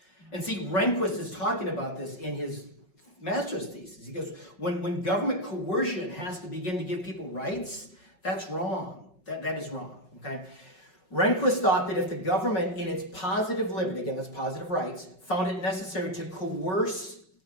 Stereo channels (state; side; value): late; right; 5.4 ms